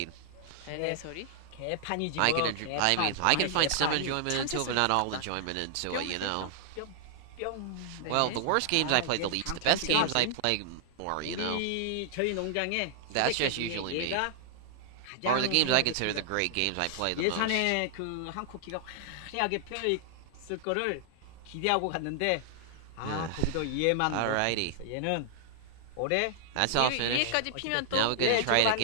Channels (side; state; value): both; different; correlation 0.00